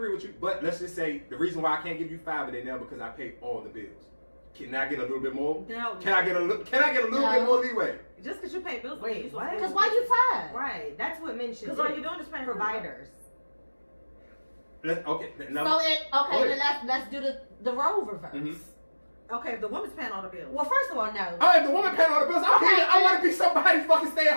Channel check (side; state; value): both; inverted; correlation -1.00